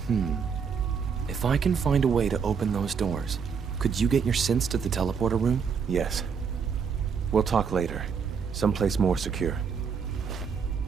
If I can find a way to open those doors, could you get your synths to the teleporter room? Yes. We'll talk later. Someplace more secure.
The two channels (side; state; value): left; quieter; 6.3 dB